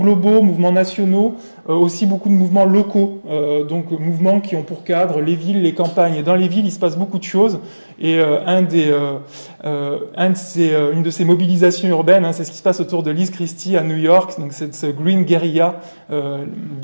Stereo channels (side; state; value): both; inverted; correlation -1.00